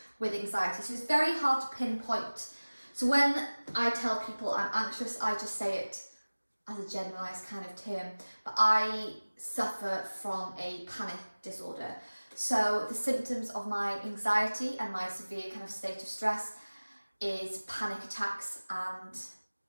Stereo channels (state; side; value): inverted; both; correlation -1.00